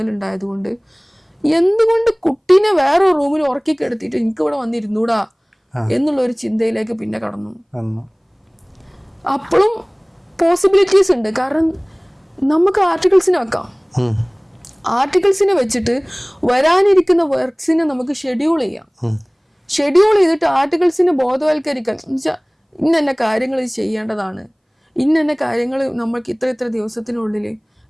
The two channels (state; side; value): identical; both; correlation 1.00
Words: എന്തുകൊണ്ട് കുട്ടീനെ വേറെ റൂമിൽ ഉറക്കി കിടത്തിയിട്ട് എനിക്ക് ഇവിടെ വന്നിരുന്നൂടാ എന്നുള്ള ഒരു ചിന്തയിലേക്ക് പിന്നെ കടന്നു. അപ്പോഴും പോസിബിലിറ്റീസ് ഉണ്ട്. കാരണം നമുക്ക് ആർട്ടിക്കിൾസിനെ വെക്കാം. ആർട്ടിക്കിൾസിനെ വെച്ചിട്ട് വരാനിരിക്കുന്ന വർക്ക്സിനെ നമുക്ക് ഷെഡ്യൂൾ ചെയ്യാം. ഷെഡ്യൂൾ ചെയ്തിട്ട് ആർട്ടിക്കിൾസിനെ ബോധവൽക്കരിക്കാൻ എന്നുവെച്ചാൽ ഇന്ന കാര്യങ്ങൾ ചെയ്യേണ്ടതാണ്, ഇന്ന കാര്യങ്ങൾ നമ്മൾക്ക് ഇത്ര ദിവസത്തിനുള്ളിൽ